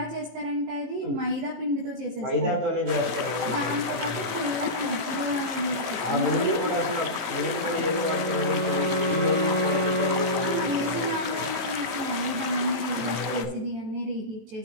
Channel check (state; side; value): late; left; 18 ms